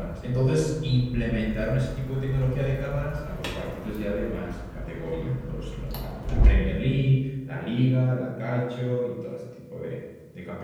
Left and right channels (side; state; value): both; identical; correlation 1.00